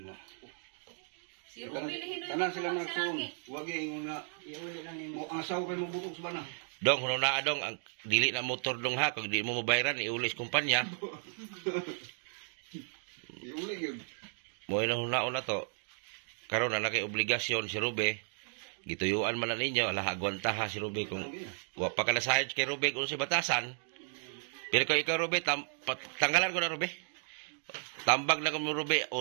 Si Ruby lihin Tanan sila magsuon. Wag ingon nga Iuli lang mo nimo. ang asawa kay mo butok sa bana. Dong, huno na dong, ang dili na motor dong ha. Kung di mo mabayaran, iulis kumpanya. Iuli gyud. Mo ilang hunaon na to. Karon na kay obligasyon si Rube. Gituyuan man na ninyo, ala agwanta ha si Rube kung wa pa ka na sahid kay Rube kung si batasan. Pero kung ikaw Rube, tanggalan ko na Rube. Tambag na kung Rube,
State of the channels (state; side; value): silent; left; 55 dB below the other